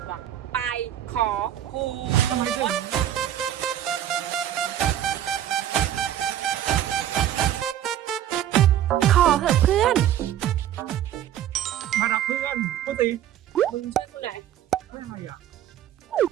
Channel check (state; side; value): quieter; left; 11.2 dB